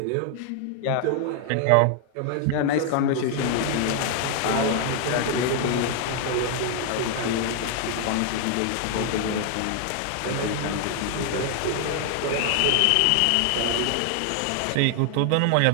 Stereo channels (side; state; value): both; different; correlation 0.00